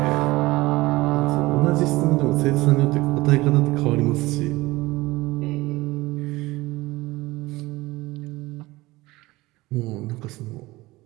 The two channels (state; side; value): quieter; left; 20.0 dB